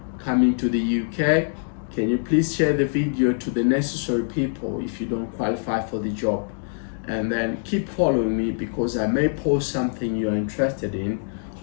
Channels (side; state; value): right; silent; digital silence